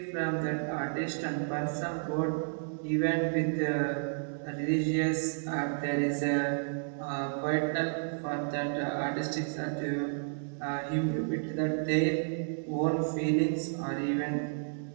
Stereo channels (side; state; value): left; silent; digital silence